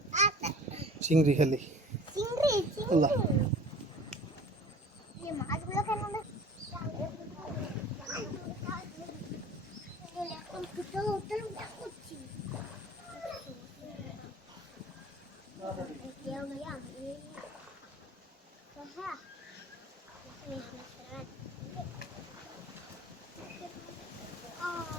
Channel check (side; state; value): both; normal; correlation 0.44